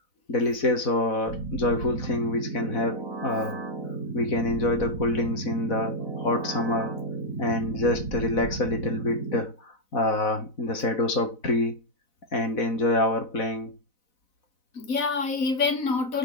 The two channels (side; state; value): right; late; 4.0 ms